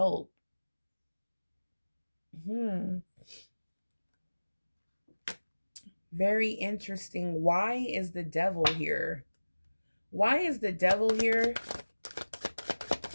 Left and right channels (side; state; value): both; inverted; correlation -1.00